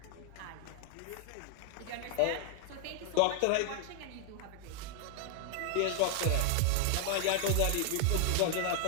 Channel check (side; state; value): both; different; correlation 0.00